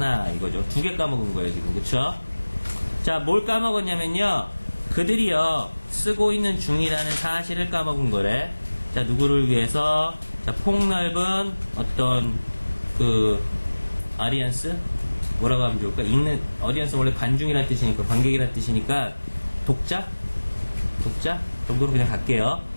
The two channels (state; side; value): inverted; both; correlation -1.00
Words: 이거죠. 두 개 까먹은 거예요, 지금. 그쵸? 자, 뭘 까먹었냐면요, 그들이요, 쓰고 있는 중이라는 사실을 까먹은 거래. 자, 누구를 위해서? 자, 폭넓은 어떤 아리안스? 뭐라고 하면 좋을까? 어디언스 원래 관중이란 뜻이니까, 관객이란 뜻이니까, 독자 정도로 그냥 갈게요.